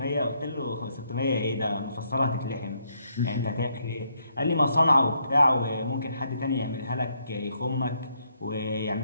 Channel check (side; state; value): both; inverted; correlation -0.74